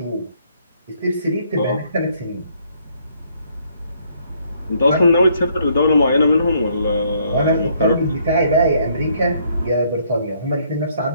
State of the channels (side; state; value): both; inverted; correlation -0.67